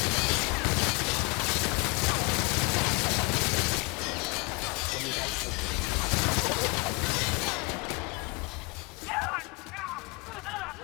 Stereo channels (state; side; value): quieter; right; 29.5 dB